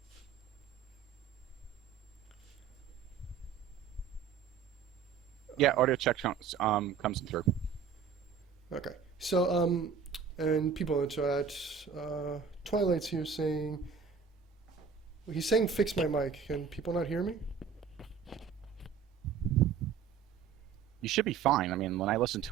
Yeah, audio check comes through. Okay. So and people in the chat, Twilight's here saying. He's saying fix my mic. Can people not hear me? You should be fine. I mean, when I listened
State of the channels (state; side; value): quieter; left; 6.5 dB